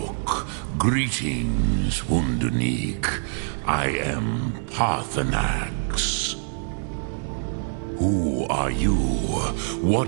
greetings, Wundernik. I am Parthenax. Who are you?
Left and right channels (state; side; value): silent; left; digital silence